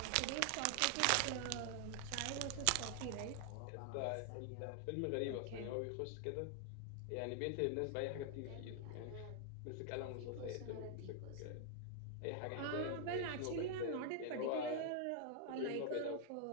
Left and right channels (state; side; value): different; both; correlation 0.00